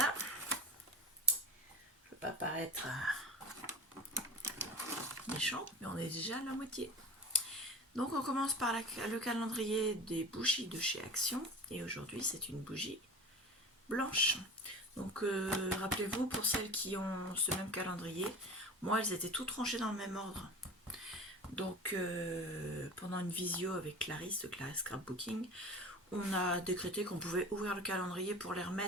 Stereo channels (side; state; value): both; normal; correlation 0.34